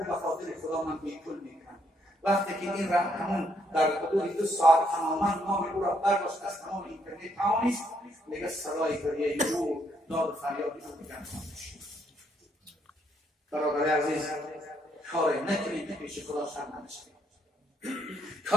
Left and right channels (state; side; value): normal; both; correlation 0.72